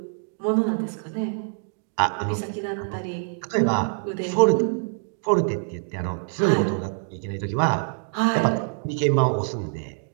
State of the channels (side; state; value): left; silent; 57 dB below the other